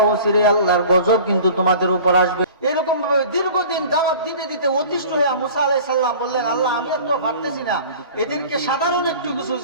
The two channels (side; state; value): both; inverted; correlation -0.43